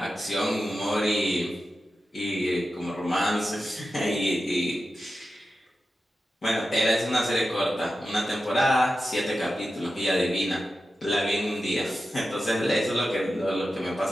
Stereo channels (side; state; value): both; normal; correlation 0.92